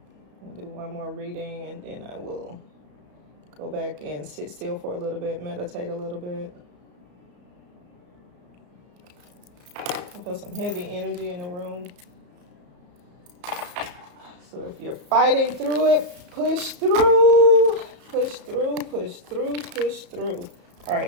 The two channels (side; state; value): left; late; 34 ms